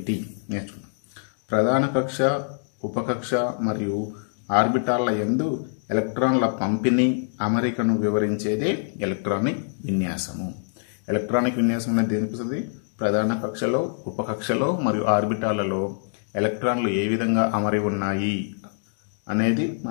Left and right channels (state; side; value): silent; right; digital silence